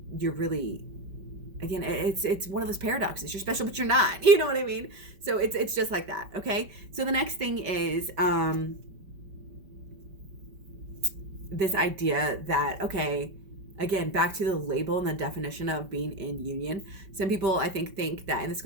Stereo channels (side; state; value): left; late; 5.2 ms